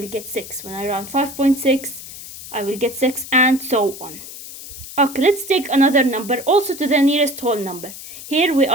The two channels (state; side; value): noise; left; hiss, 13 dB below the sound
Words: get 6. When I round 5.6, I will get 6, and so on. Okay, let's take another number, also to the nearest whole number. Here we